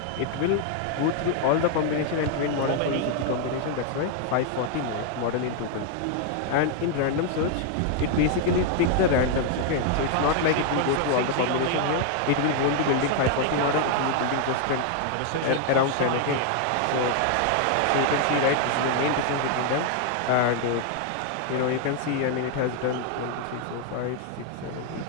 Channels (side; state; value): both; different; correlation 0.00